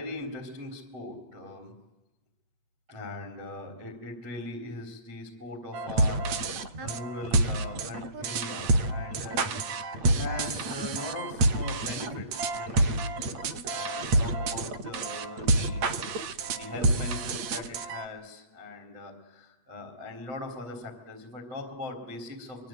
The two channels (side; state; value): left; late; 8.7 ms